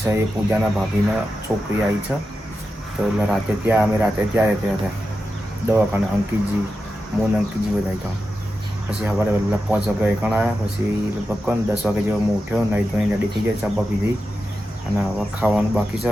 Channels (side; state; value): both; normal; correlation 0.90